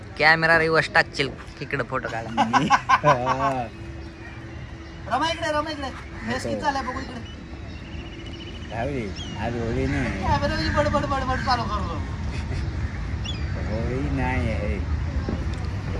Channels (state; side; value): identical; both; correlation 1.00